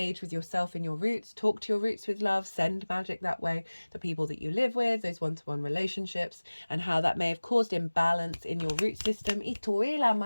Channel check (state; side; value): inverted; both; correlation -1.00